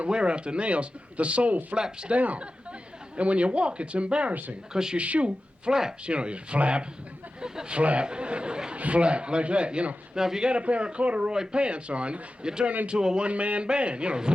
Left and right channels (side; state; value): both; normal; correlation 0.94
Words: out the nails, the sole flaps down. And when you walk, it's embarrassing, because your shoe flaps. You flap, flap, flap, like that, Now, if you got a pair of corduroy pants on, you turn into a one-man band,